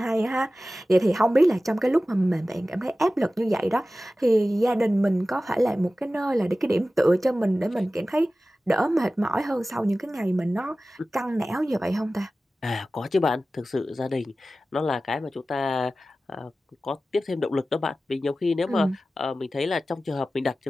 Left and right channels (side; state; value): both; normal; correlation 0.96